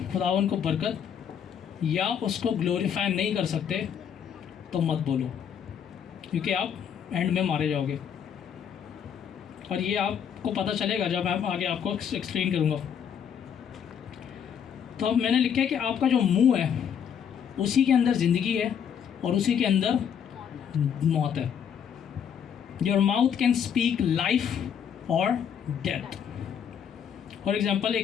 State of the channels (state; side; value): quieter; right; 8.1 dB